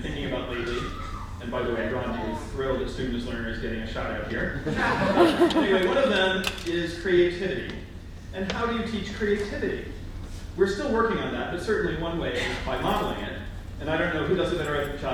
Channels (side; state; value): both; identical; correlation 1.00